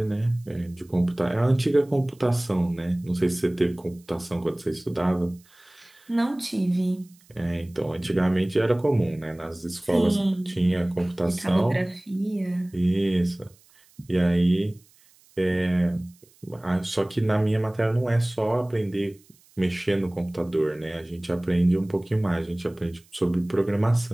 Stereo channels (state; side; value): noise; right; hiss, 30 dB below the sound